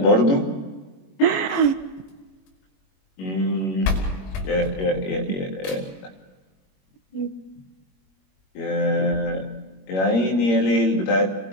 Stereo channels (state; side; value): late; right; 21 ms